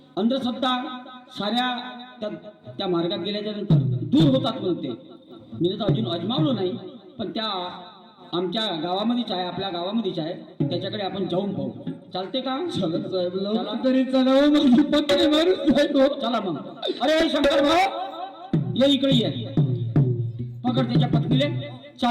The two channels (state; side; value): identical; both; correlation 1.00